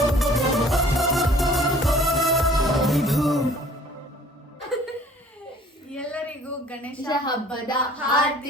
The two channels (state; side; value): normal; both; correlation 0.53